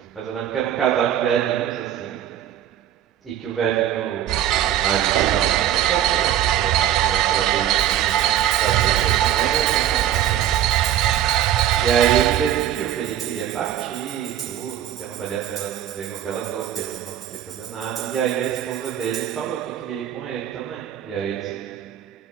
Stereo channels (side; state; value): left; quieter; 11.2 dB